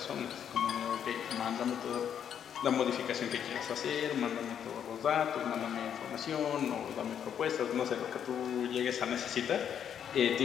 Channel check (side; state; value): right; quieter; 8.7 dB